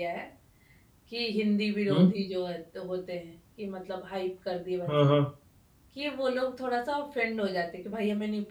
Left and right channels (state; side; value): identical; both; correlation 1.00